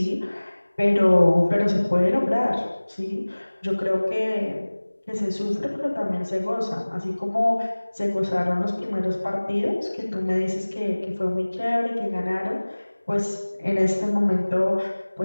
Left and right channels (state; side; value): inverted; both; correlation -1.00